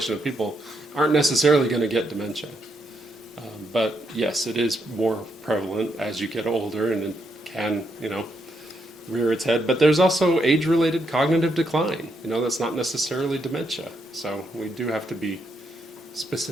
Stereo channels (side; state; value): both; normal; correlation 0.79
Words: of people aren't necessarily going to get dementia. But yes, it is more prevalent as you get older, and it can, rear its head. But there's also age-related cognitive decline. That's not necessarily dementia. So we do have to be